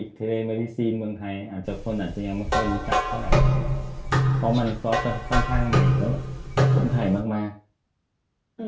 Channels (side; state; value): both; identical; correlation 1.00